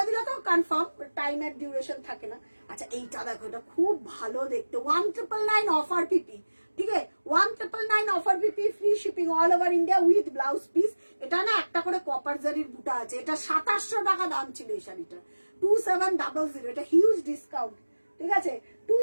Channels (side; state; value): both; inverted; correlation -1.00